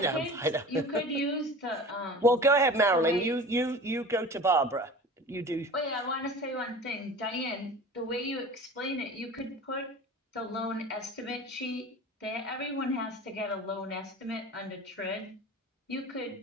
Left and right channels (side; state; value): both; normal; correlation 0.38